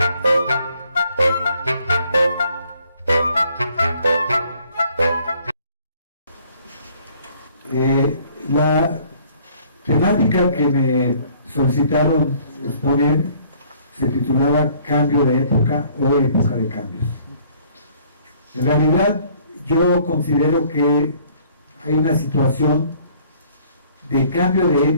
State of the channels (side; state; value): both; inverted; correlation -0.59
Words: temática que me solicitaron exponer se titulaba Cambio de época o época de cambios. En realidad yo considero que hay una situación de cambio de